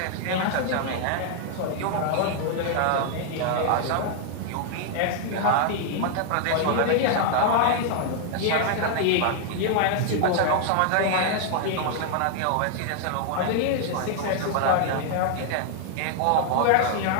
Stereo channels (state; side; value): different; both; correlation 0.00